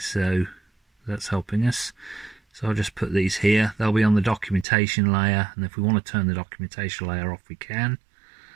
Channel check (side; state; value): left; drops out; at 4.7 s